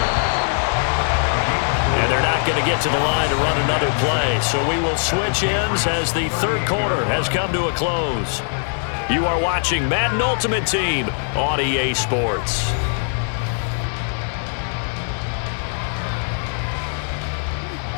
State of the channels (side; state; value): right; silent; digital silence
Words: And they're not going to get to the line to run another play. So we will switch ends as the third quarter has come to a close. You are watching Madden Ultimate Team on EA Sports.